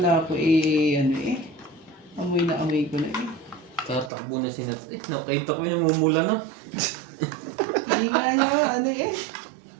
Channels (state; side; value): drops out; left; at 4.1 s